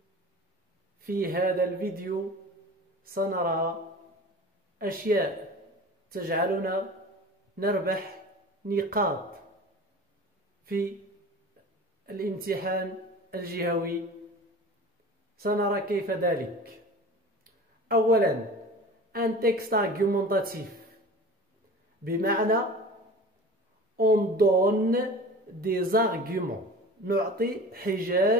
الفيديو سنرى أشياء تجعلنا نربح نقاط في الامتحان الجهوي. سنرى كيف ذلك. أولا un texte argumentatif، بمعنى on donne des arguments، نعطي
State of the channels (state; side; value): normal; both; correlation 0.38